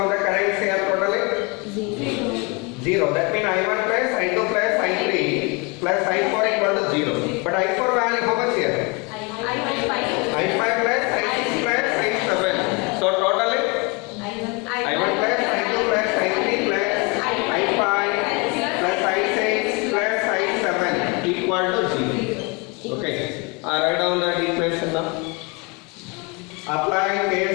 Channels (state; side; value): quieter; right; 29.8 dB